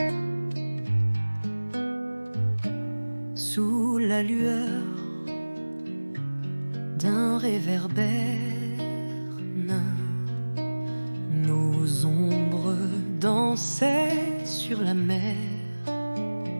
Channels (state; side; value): inverted; both; correlation -1.00